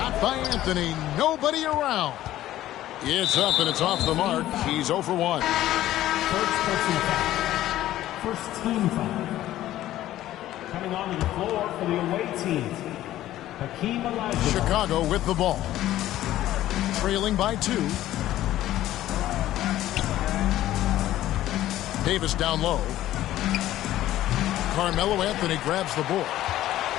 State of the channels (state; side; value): quieter; right; 14.0 dB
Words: by Anthony, nobody around. It's up and it's off the mark. He's 0 for 1. First personal foul. First team foul. Coming onto the floor for the away team, Hakeem Olajuwon. Chicago with the ball. Trailing by 2. Davis down low. Carmelo Anthony grabs the ball.